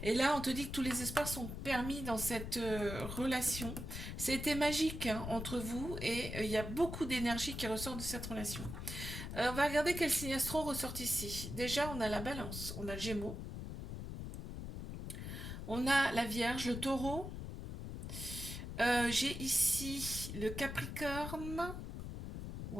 Et là, on te dit que tous les espaces sont permis dans cette relation. C'était magique, hein, entre vous, et il y a beaucoup d'énergie qui ressort de cette relation. On va regarder quel signe astro ressort ici. Déjà, on a la balance, on a le gémeaux, on a la vierge, le taureau. J'ai ici le capricorne,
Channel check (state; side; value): noise; left; rumble, 7 dB below the sound